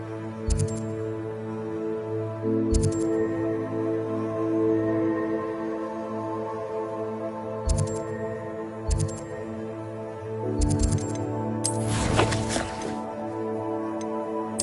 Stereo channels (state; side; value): identical; both; correlation 1.00